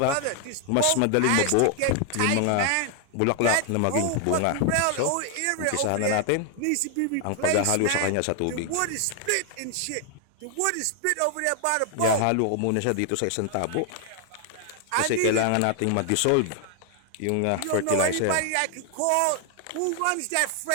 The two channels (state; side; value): different; both; correlation 0.00